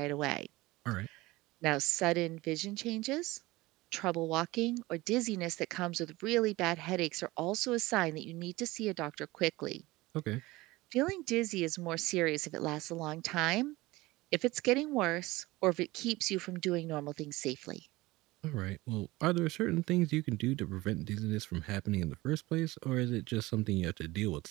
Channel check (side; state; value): left; quieter; 20.2 dB